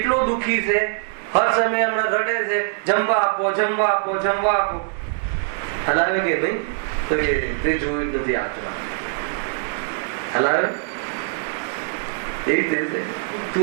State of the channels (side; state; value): left; silent; digital silence